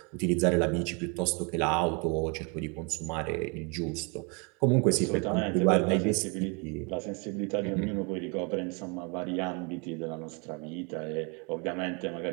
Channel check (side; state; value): left; quieter; 33.3 dB